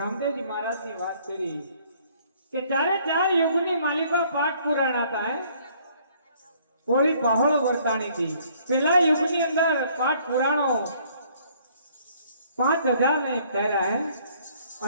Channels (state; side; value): inverted; both; correlation -0.61